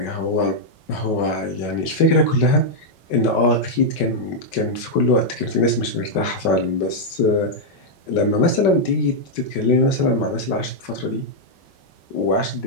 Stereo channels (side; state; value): right; late; 5.3 ms